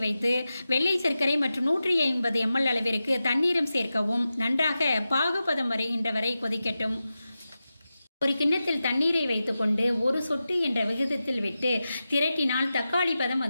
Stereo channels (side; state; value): both; inverted; correlation -0.92